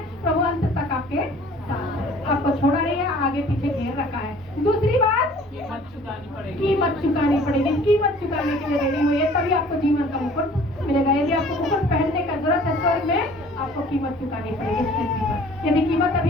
प्रभु अंत तक आपके साथ है, आपको छोड़ा नहीं है, आगे पीछे घेर रखा है। दूसरी बात, कीमत चुकानी पड़ेगी। कीमत चुकाने के लिए रेडी हुई है, तभी आपको जीवन का मुकुट मिलेगा। यदि आपको मुकुट पहनने का जरूरत है स्वर्ग में, आपको कीमत चुकानी पड़ेगी इस पृथ्वी पर। यदि कीमत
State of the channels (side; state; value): both; normal; correlation 0.51